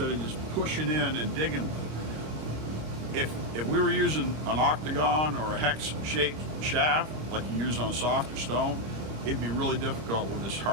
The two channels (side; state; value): left; late; 26 ms